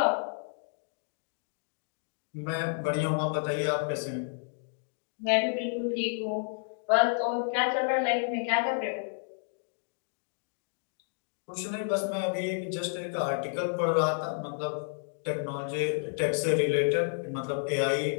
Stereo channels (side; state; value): right; silent; digital silence